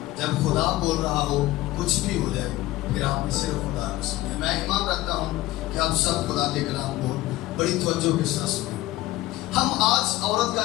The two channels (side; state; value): right; quieter; 17.1 dB